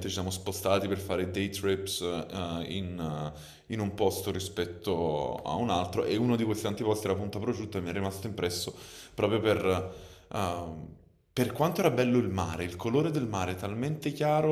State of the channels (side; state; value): both; identical; correlation 1.00